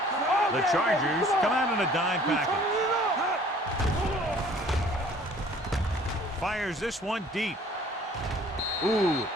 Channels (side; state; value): both; normal; correlation 0.53